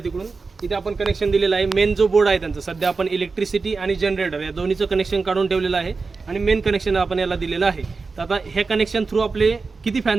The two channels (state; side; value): quieter; left; 4.3 dB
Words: तिकडून। इथे आपण कनेक्शन दिलेलं आहे। मेन जो बोर्ड आहे त्यांचा सध्या आपण इलेक्ट्रिसिटी आणि जनरेटर या दोन्हीचं कनेक्शन काढून ठेवलेलं आहे आणि मेन कनेक्शन आपण याला दिलेलं आहे। तर आता हे कनेक्शन थ्रू आपले किती फॅन